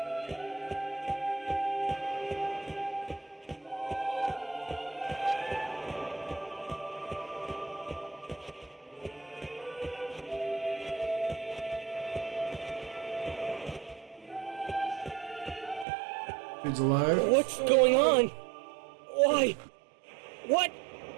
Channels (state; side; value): drops out; left; at 15.9 s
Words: Dude's alive. What's going on? Why? What?